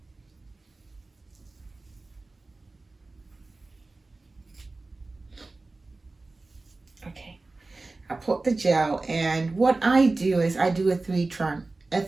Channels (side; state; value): left; quieter; 3.4 dB